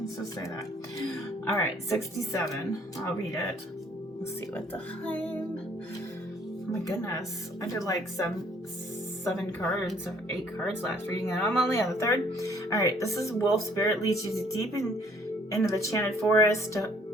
just say that. All right, 67. I'll read it. Let's see what the time. Oh my goodness, I did like 7 cards or 8 cards last reading, and I'm only on the 3rd. All right, this is wolf spirit leads you into the enchanted forest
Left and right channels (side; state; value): both; normal; correlation 0.61